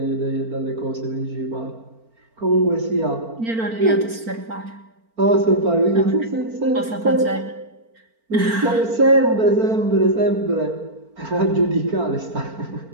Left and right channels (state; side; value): late; left; 4.4 ms